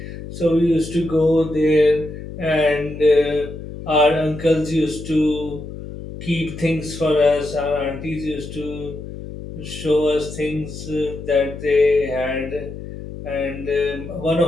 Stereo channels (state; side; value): noise; left; hum, 11 dB below the sound